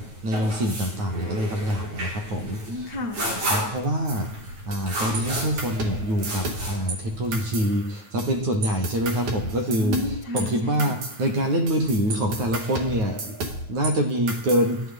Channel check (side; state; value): left; late; 9.3 ms